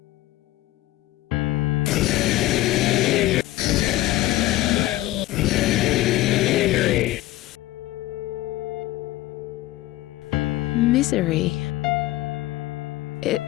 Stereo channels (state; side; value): quieter; right; 16.8 dB